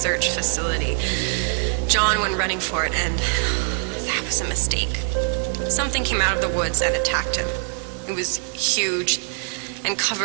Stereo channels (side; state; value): left; quieter; 36.9 dB